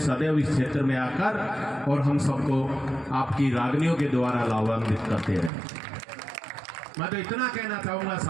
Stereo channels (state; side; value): drops out; left; at 5.5 s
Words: सदैव इस क्षेत्र में आकर, और हम सबको आपकी रागनियों के द्वारा लाभान्वित करते रहे। मैं तो इतना कहना चाहूंगा